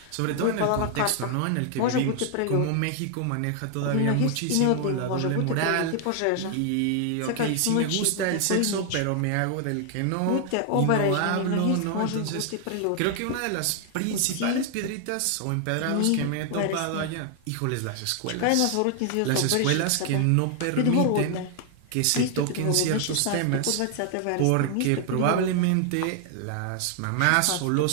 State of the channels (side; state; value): both; different; correlation 0.00